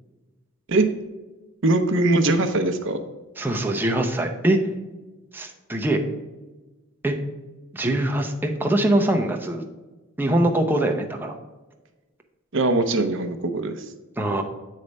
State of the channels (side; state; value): both; normal; correlation 0.56